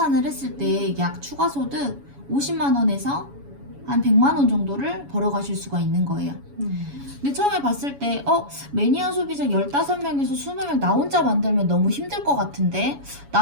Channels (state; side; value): late; left; 7.1 ms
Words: 했을 때 약 추가소득 50만원에서 한 100만원 정도를 벌어가실 수가 있는 거예요. 근데 처음에 봤을 때 매니아 소비자 15명에서 20명 나 혼자 만들면 너무 힘들 것 같은데